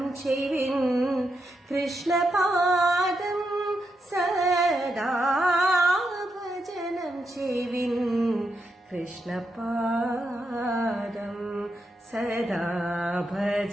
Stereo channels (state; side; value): normal; both; correlation 0.83